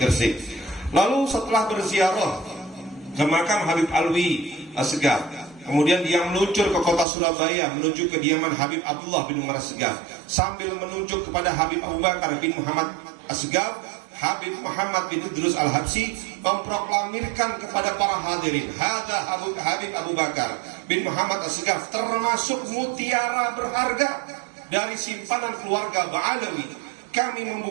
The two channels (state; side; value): drops out; left; at 7.1 s